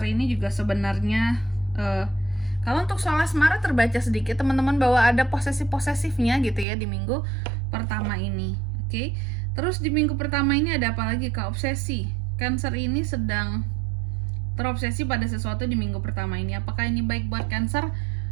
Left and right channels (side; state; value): left; drops out; at 6.7 s